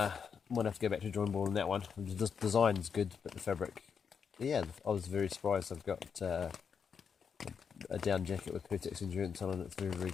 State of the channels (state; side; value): quieter; right; 6.6 dB